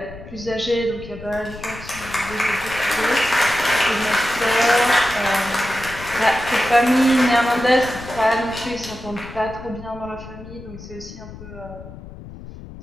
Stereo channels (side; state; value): left; noise; rumble, 15 dB below the sound